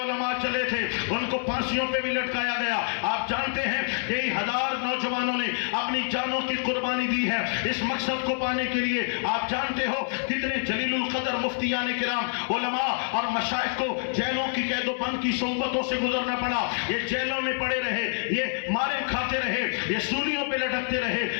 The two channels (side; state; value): right; silent; digital silence